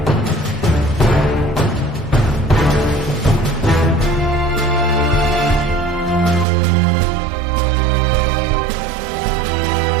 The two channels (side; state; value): left; drops out; at 6.5 s